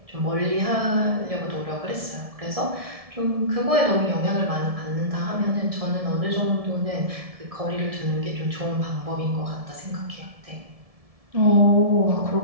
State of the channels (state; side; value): late; left; 1.7 ms